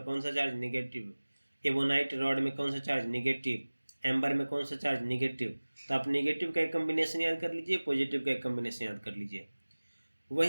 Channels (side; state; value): both; inverted; correlation -1.00